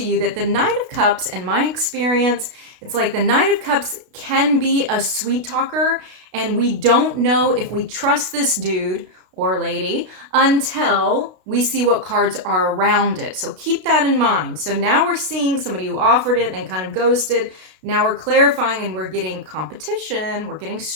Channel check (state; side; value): late; left; 32 ms